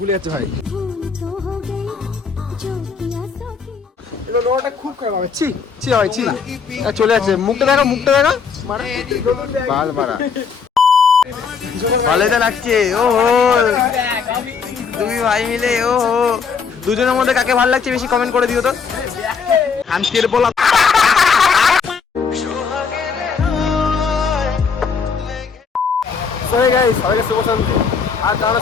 যাচ্ছে ভাই লোটা খুব খারাপ হবে ছি ছি হয় ছি চলে যাচ্ছে মুখটা দেখা বাল মারা ভালোই তো লাগছে ও হো তুমি ভাই মিলে ও হো দুজনের মধ্যে কাকে ভালো লাগছে বেশি কমেন্ট করে দিও তো শান্তির বলা সবাইকে শুভ সন্ধ্যে আর তারা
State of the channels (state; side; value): quieter; right; 5.8 dB